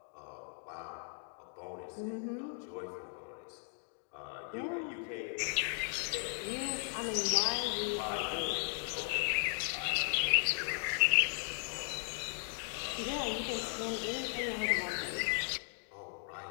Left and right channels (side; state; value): right; silent; 53 dB below the other